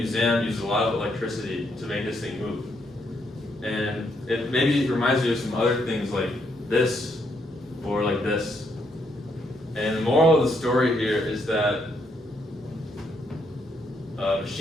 uses a lot of electricity to make this thing move. And it maybe reminds you of some other things like this, or like this. And the moral of the story here is that a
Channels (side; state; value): both; normal; correlation 0.75